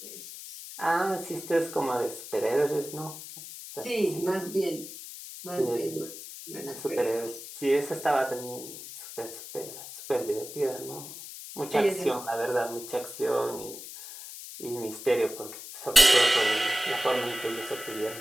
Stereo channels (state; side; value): noise; left; hiss, 12 dB below the sound